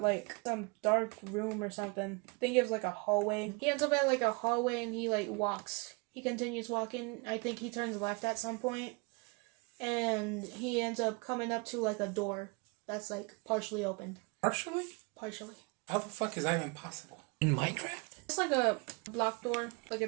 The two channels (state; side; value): quieter; left; 30.1 dB